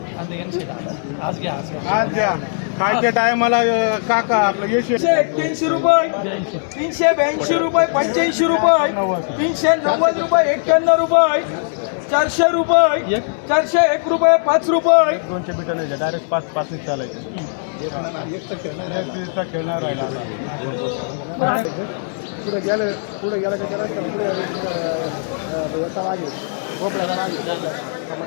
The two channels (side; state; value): right; silent; digital silence